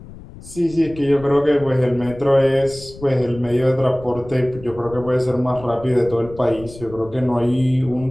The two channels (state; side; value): noise; left; rumble, 17 dB below the sound